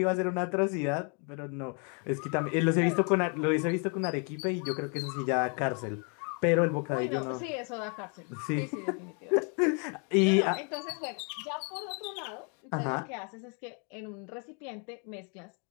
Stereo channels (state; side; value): quieter; right; 37.5 dB